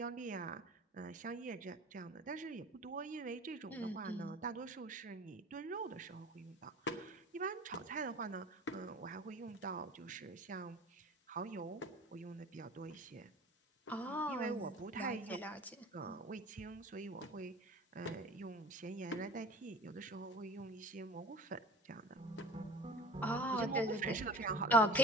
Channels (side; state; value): both; normal; correlation 0.39